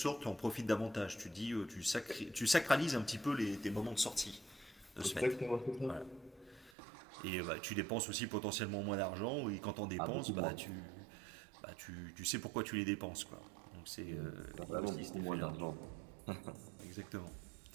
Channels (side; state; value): left; drops out; at 6.7 s